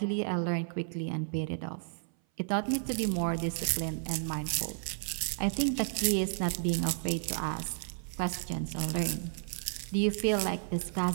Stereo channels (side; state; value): left; silent; 56 dB below the other